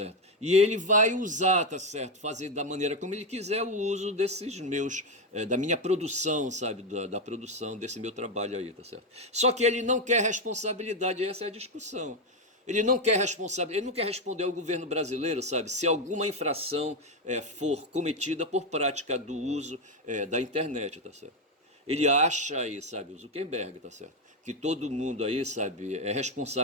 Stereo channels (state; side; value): normal; both; correlation 0.08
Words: E ele vai usar, tá certo? Fazer da maneira como ele quiser o uso desses meus, da minha produção, sabe? Da produção desse meu trabalho aí, tá certo? Só que ele não quer responsabilidade, essa é a discussão. Ele não quer ele não quer responder ao governo brasileiro, sabe, se alguma infração for cometida por prática do uso da internet, tá certo? Ele acha aí, sabe, o Zuckerberg, tá certo? Que todo mundo aí, sabe, é